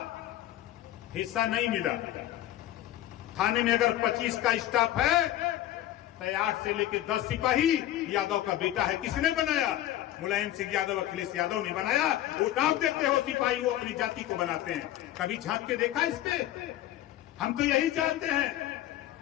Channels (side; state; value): right; quieter; 13.6 dB